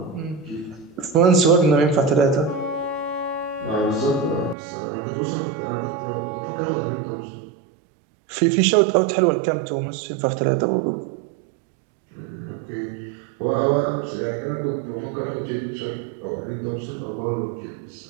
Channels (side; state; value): left; drops out; at 4.5 s